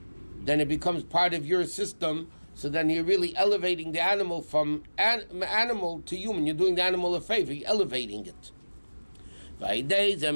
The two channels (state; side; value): inverted; both; correlation -1.00